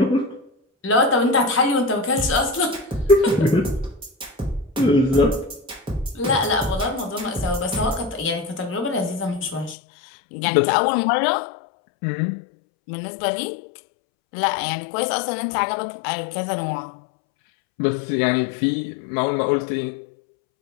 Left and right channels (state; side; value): drops out; right; at 9.8 s